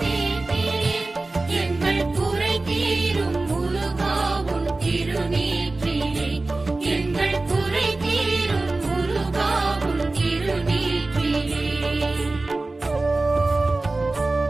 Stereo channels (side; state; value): left; quieter; 3.2 dB